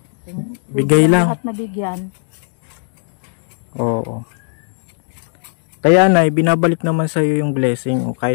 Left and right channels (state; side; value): silent; right; 68 dB below the other